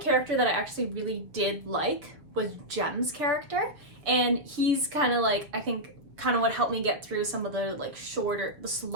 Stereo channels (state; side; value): late; left; 6.7 ms